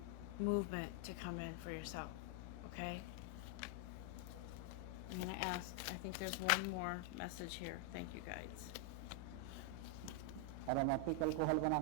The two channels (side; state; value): both; different; correlation 0.00